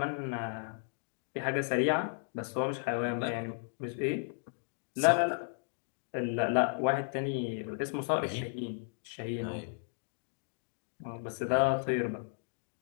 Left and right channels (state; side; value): silent; right; 55 dB below the other